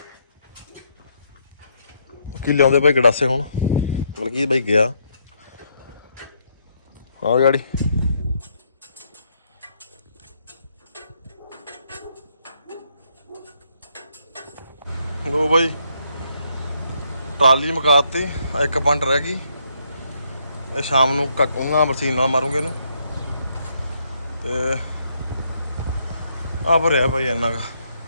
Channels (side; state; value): both; inverted; correlation -0.74